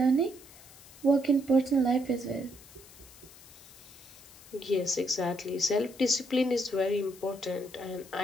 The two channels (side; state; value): left; noise; hiss, 21 dB below the sound